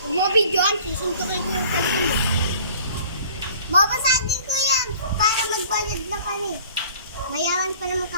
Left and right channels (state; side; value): inverted; both; correlation -0.50